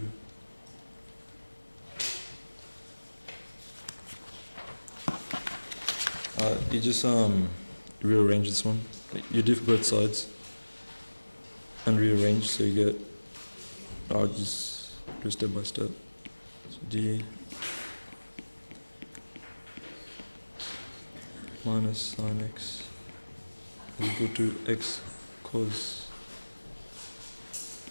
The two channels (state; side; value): inverted; both; correlation -1.00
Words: You just rearrange this one. You diff both sides and rearrange, so you get. I'll just do step by step. So D minus sin x is equal to x cos